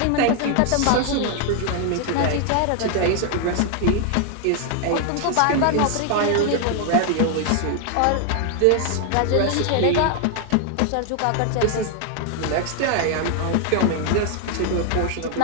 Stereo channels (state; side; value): different; both; correlation 0.00